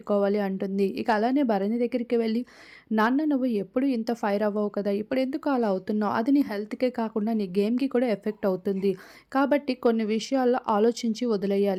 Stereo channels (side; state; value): both; identical; correlation 1.00